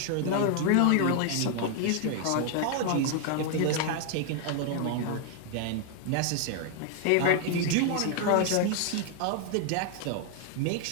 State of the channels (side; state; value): both; different; correlation 0.00